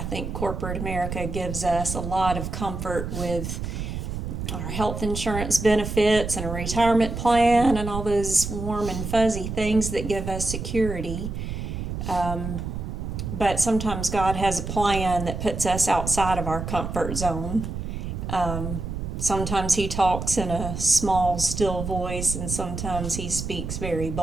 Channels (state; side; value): noise; right; rumble, 5 dB below the sound